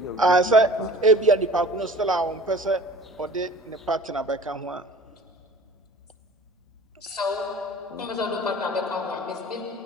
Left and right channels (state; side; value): normal; both; correlation 0.44